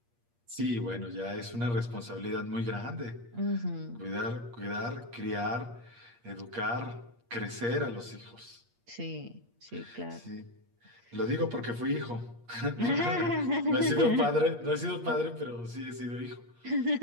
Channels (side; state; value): left; late; 8.5 ms